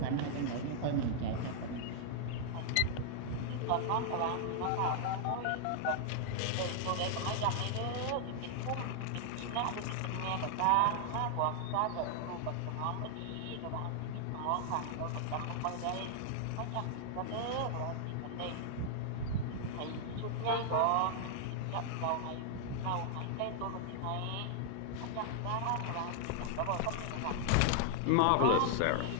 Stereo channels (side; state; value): both; different; correlation -0.01